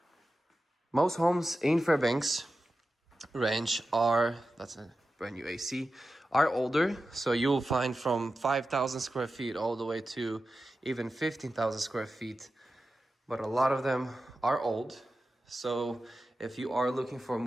Most homes in Fairbanks Ranch are, that's a brand new AC, are older. So you'll find from 5,000 square feet all the way to even 15,000 square feet. But a lot of them are old. So if you are looking for a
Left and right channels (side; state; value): both; normal; correlation 0.93